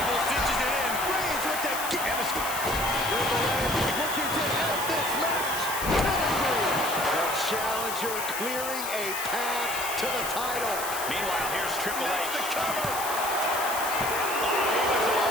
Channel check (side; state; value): left; noise; hiss, 6 dB below the sound